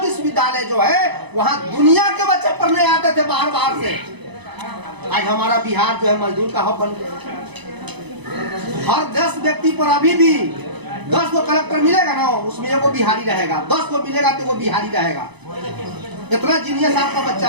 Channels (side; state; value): left; late; 0.99 ms